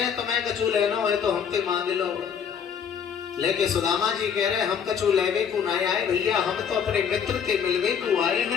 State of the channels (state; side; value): quieter; right; 7.4 dB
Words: तुम्हें कछु लेना हो तो हमसे मांग लो। लेकिन सुदामा जी कह रहे हम कछु लेवे को नहीं आए भैया, हम तो अपने मित्र से मिलवे को आए